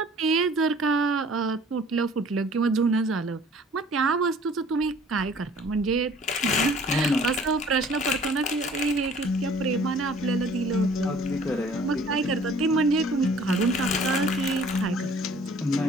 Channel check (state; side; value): normal; both; correlation 0.53